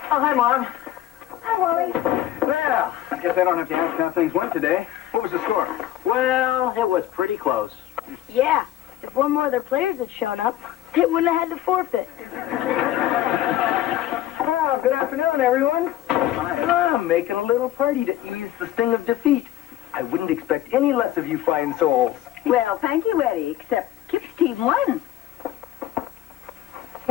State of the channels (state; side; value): quieter; right; 13.1 dB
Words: Oh, hi, Mom. Hi, Wally. Well, I guess I don't have to ask how things went today. What was the score? Well, it was pretty close. Yeah, if one more of their players had shown up, they wouldn't have had to forfeit. Oh, good afternoon, everyone. I'm making a little party to ease the sting of defeat. I wouldn't expect any less of you fine souls. Well, thank you, Eddie, except Kip's team won.